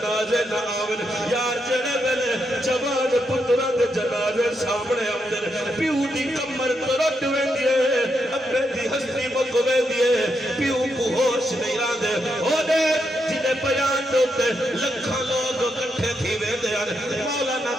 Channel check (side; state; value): both; normal; correlation 0.81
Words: نہ آون یار جڑے ویلے جوان پتر دے جنازے سامنے اندر پیو دی کمر ترٹ ویندی ہے اپنے دی ہستی مک ویندی ہے پیو کو ہوش نہیں راندے او دے جنہیں بیان دوتے لکھاں لوگ کٹھے تھی ویندے ہیں مولانا